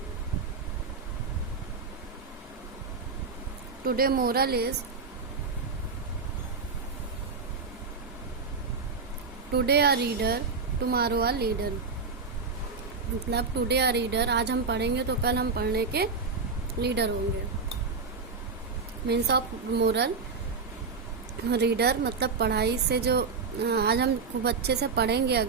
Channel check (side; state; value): left; quieter; 4.7 dB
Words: Today moral is today a reader, tomorrow a leader. मतलब today आ reader, आज हम पढ़ेंगे तो कल हम पढ़ने के लीडर होंगे. मीन्स ऑफ मोरल, रीडर मतलब पढ़ाई से जो आज हम खूब अच्छे से पढ़ेंगे